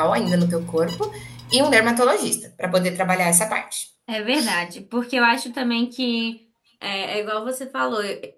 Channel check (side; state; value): both; identical; correlation 1.00